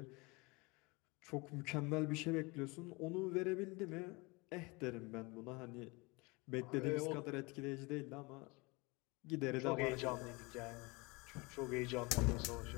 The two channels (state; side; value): quieter; right; 26.3 dB